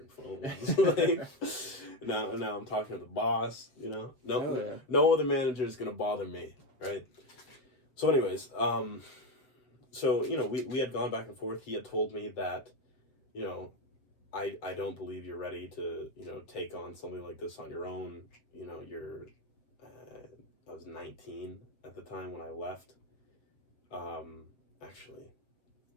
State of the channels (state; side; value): late; right; 7.7 ms